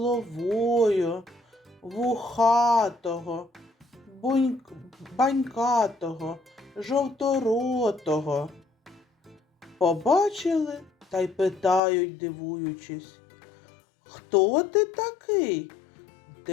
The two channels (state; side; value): drops out; right; at 11.8 s